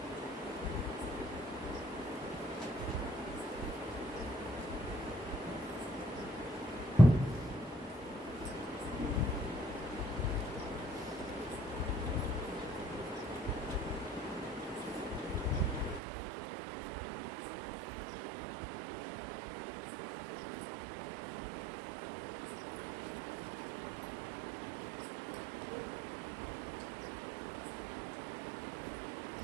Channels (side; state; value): left; drops out; at 16.0 s